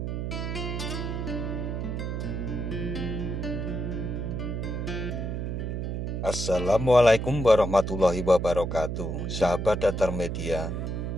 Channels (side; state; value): right; noise; hum, 3 dB below the sound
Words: Assalamualaikum warahmatullahi wabarakatuh. Sahabat Datar Media,